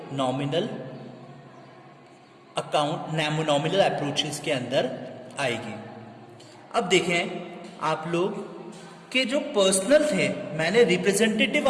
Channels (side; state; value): both; identical; correlation 1.00